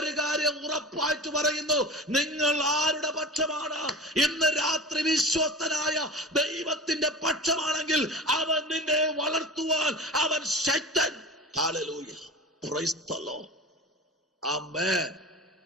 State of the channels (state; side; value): normal; both; correlation 0.33